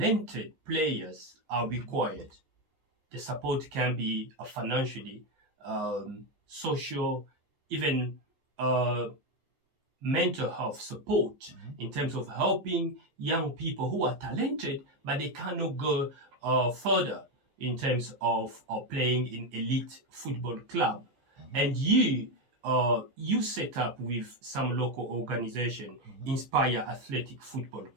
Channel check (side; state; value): left; late; 15 ms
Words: players are required. The support can be financially, social, even uh, mental health support in terms of helping young people who are talented but they cannot go further in terms of playing in elite football club. And you set up with some local organization, Inspire Athletic Football